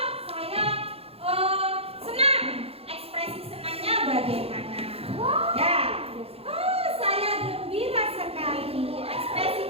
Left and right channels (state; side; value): late; left; 0.29 ms